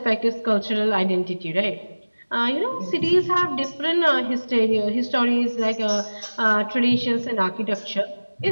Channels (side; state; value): both; inverted; correlation -1.00